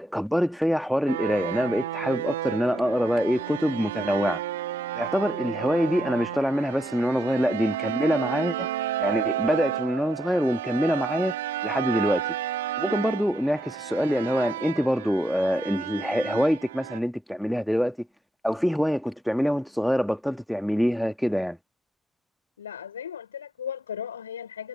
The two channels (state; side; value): normal; both; correlation 0.81